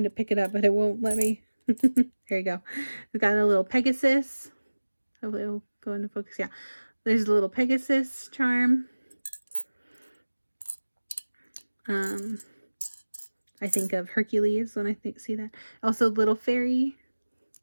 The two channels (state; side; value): inverted; both; correlation -1.00